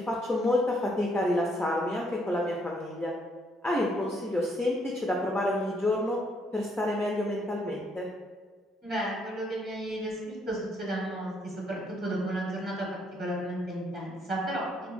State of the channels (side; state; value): both; normal; correlation 0.71